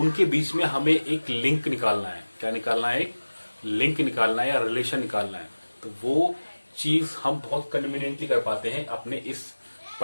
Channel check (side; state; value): both; inverted; correlation -1.00